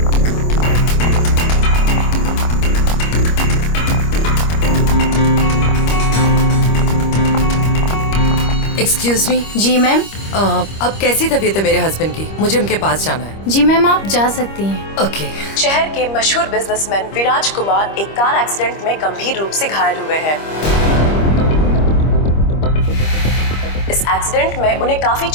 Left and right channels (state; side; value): late; right; 25 ms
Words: Excuse me, ji ma'am. अब कैसी तबीयत है मेरे हस्बैंड की? मुझे उनके पास जाना है। जी मैम, आप जा सकती हैं। ओके। शहर के मशहूर बिजनेसमैन विराज कुमार एक कार एक्सीडेंट में गंभीर रूप से घायल हुए हैं। इस एक्सीडेंट में उन्हें काफी